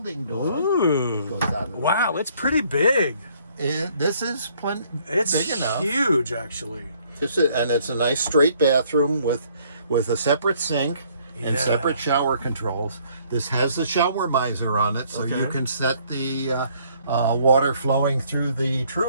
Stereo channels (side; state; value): both; inverted; correlation -0.63